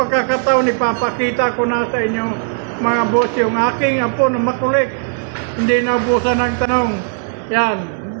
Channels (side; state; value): left; silent; digital silence